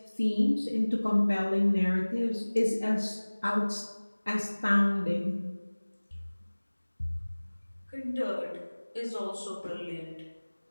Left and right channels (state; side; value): inverted; both; correlation -1.00